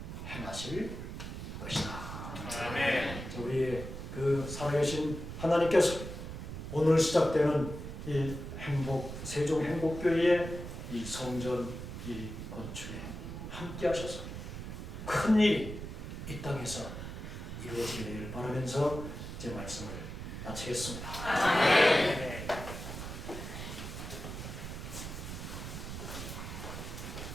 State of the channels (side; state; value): right; noise; rumble, 8 dB below the sound